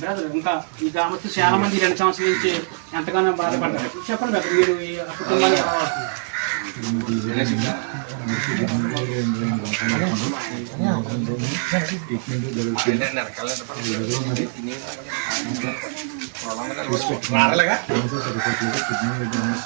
ఇంకా ఈ గ్రామస్తులు చాలా మంది 2 సంవత్సరాల నుంచి ఎంతగానో బాధపడ్డారు. చెప్పండి బ్రదర్, మీరు ఈ కుటుంబాన్ని ఎలా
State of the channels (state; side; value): silent; left; digital silence